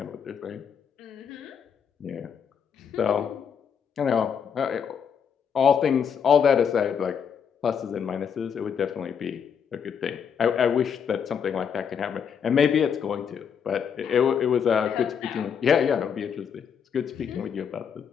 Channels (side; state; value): right; quieter; 7.3 dB